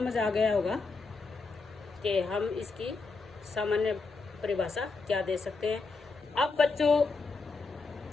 आ गया होगा कि हम इसकी सामान्य परिभाषा क्या दे सकते हैं। अब बच्चों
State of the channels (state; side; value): quieter; right; 4.1 dB